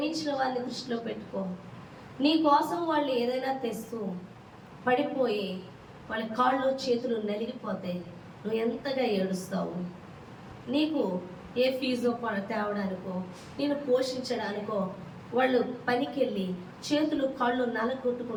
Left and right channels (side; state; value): both; identical; correlation 1.00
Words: వారిని దృష్టిలో పెట్టుకో. నీ కోసం వాళ్ళు ఏదైనా తెస్తూ పడిపోయి వాళ్ళ కాళ్ళు చేతులు నలిగిపోతే నువ్వు ఎంతగా ఏడుస్తావు? నీకు ఏ ఫీజో తేవడానికో, నేను పోషించడానికో వాళ్ళు పనికి వెళ్ళి చేతులు కాళ్ళు